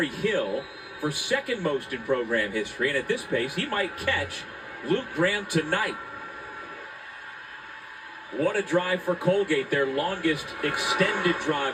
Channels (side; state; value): both; identical; correlation 1.00